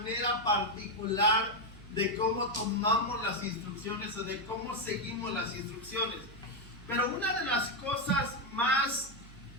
particular de cómo tomamos las instrucciones o de cómo seguimos las instrucciones. Pero una de las cosas más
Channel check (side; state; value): right; noise; hum, 18 dB below the sound